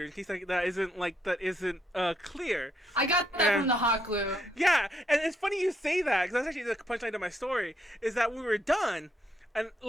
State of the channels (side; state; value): both; normal; correlation 0.75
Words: In case that isn't clear. I got that from the hot glue. Yeah, and it's funny you say that because that's actually the punchline to my story. Is that we were done, and